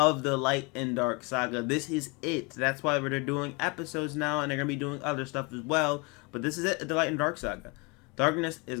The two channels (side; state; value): right; quieter; 29.5 dB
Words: the Light and Dark saga. This is it. That's why they're doing episodes now, and they're going to be doing other stuff as well. But this is it, the Light and Dark saga. Darkness